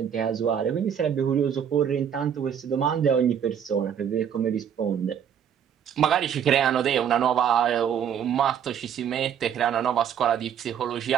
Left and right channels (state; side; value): quieter; left; 8.5 dB